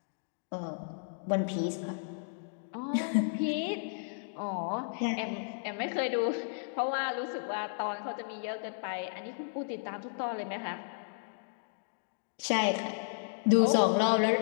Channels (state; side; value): silent; right; digital silence